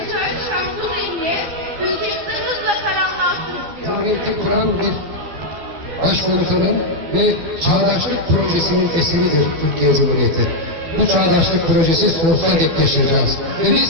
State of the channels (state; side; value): late; left; 12 ms